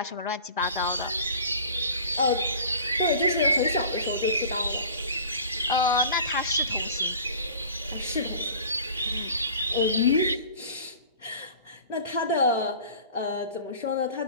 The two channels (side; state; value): both; inverted; correlation -0.43